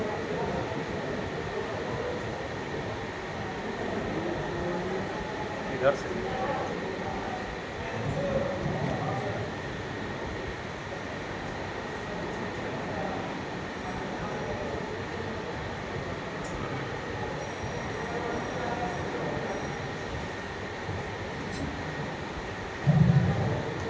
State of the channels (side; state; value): both; identical; correlation 1.00